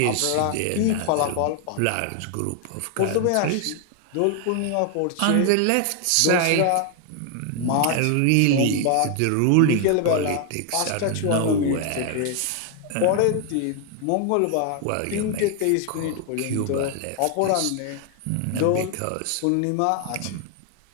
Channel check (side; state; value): both; different; correlation 0.00